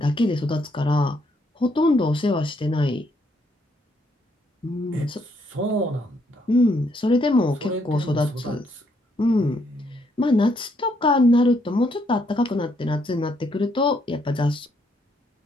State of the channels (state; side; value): normal; both; correlation 0.72